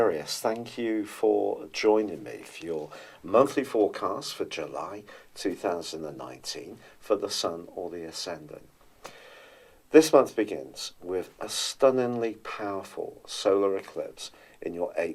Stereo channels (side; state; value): both; identical; correlation 1.00